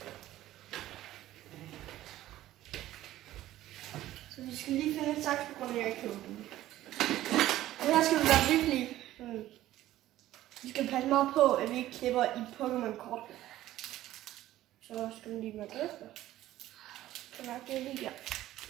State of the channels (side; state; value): left; quieter; 14.5 dB